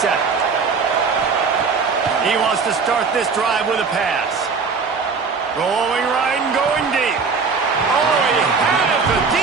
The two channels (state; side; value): quieter; left; 5.1 dB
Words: He wants to start this drive with a pass. Rolling right and going deep. Oh, he had it. The